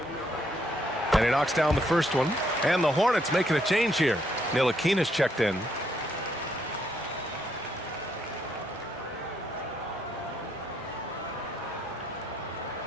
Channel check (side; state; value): both; normal; correlation 0.73